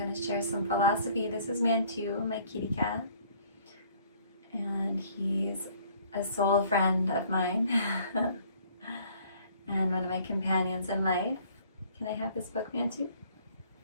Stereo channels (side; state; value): both; inverted; correlation -0.57